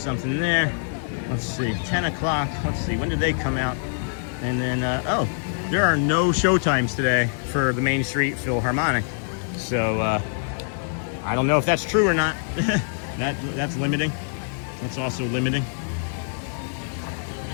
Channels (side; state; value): right; silent; digital silence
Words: there. Let's see, 10 o'clock. Let's see, when did they come out? And then, oh, there are no show times today for the Main Street Philharmonic. So I don't know if that's true or not. That's limiting. That's also limiting.